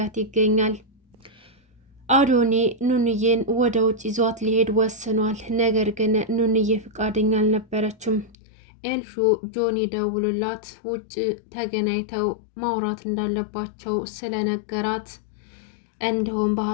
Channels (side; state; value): right; drops out; at 8.3 s